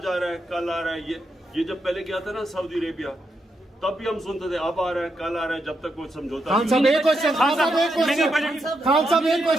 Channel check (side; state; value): both; normal; correlation 0.82